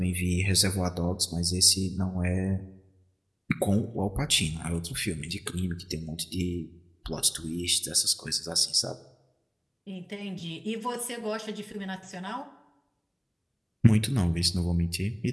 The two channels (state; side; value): identical; both; correlation 1.00